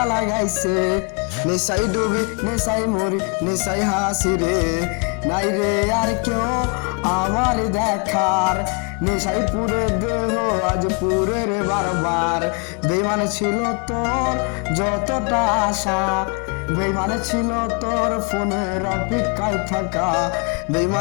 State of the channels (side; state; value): right; quieter; 35.5 dB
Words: লাগাইছে নেশাই ডুবি নেশাই মরি নেশাই হাসি রে নাই রে আর কেউ আমার দেখার নেশাই পুরে দেহ আজ পুরে রে বারবার বেইমান ছিল তোর যতটা আশা বেইমান ছিল তোর ফোনের অপেক্ষায় থাকা